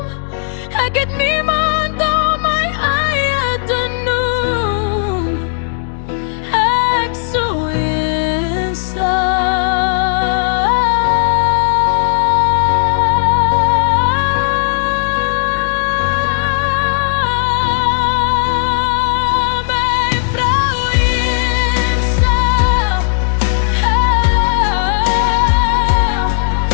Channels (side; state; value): right; silent; digital silence